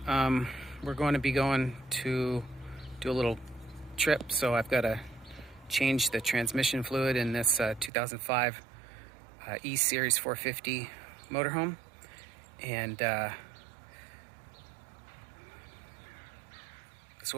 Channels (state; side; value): drops out; left; at 7.9 s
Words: We're going to be going to do a little trip, so I've got to change the transmission fluid in this 2005 E-Series 450 motorhome, and that's